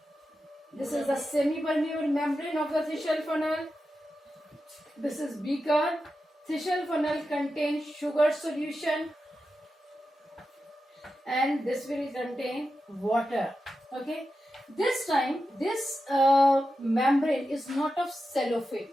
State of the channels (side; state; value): both; normal; correlation 0.90